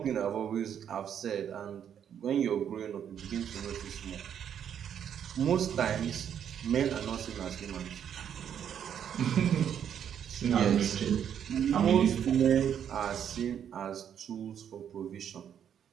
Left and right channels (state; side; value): quieter; left; 8.9 dB